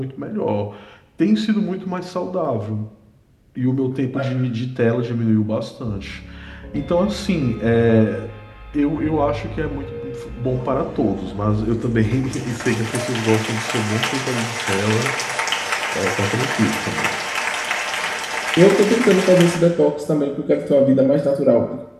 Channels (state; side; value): identical; both; correlation 1.00